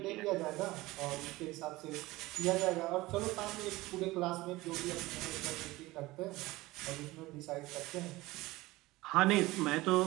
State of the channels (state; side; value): quieter; left; 19.5 dB